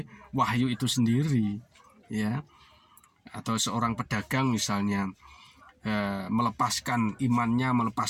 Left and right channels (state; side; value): identical; both; correlation 1.00